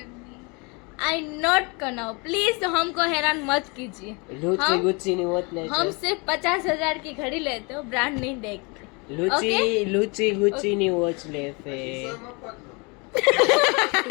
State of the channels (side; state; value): right; quieter; 30.1 dB